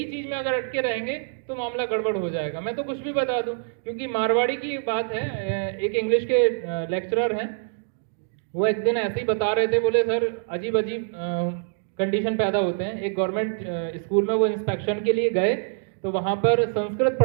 चीज में अगर अटके रहेंगे तो मामला गड़बड़ हो जाएगा। मैं तो कुछ भी बता दूं, क्योंकि मारवाड़ी की बात है, एक इंग्लिश के लेक्चरर हैं, वो एक दिन ऐसे ही बता रहे थे, बोले सर अजीब अजीब कंडीशन पैदा होते हैं। एक गवर्नमेंट स्कूल में वो इंस्पेक्शन के लिए गए, तो वहां पर संस्कृत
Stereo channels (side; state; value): left; silent; digital silence